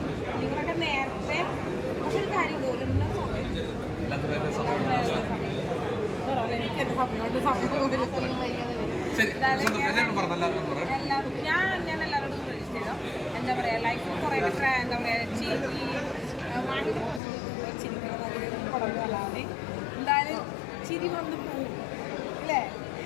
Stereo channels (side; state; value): right; drops out; at 17.2 s